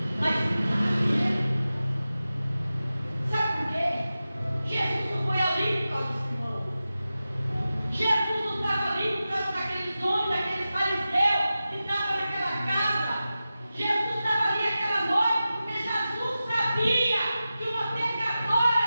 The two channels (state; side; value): inverted; both; correlation -0.94